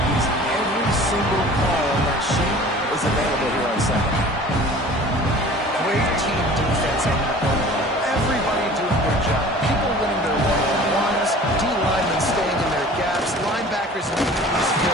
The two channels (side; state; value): both; normal; correlation 0.44